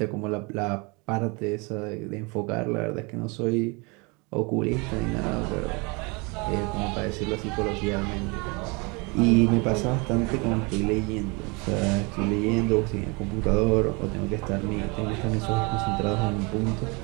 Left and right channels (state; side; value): quieter; left; 28.8 dB